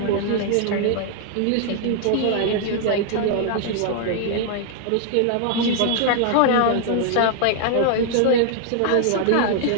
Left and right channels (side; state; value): both; different; correlation 0.00